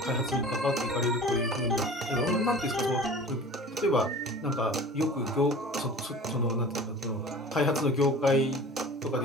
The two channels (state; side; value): normal; both; correlation 0.40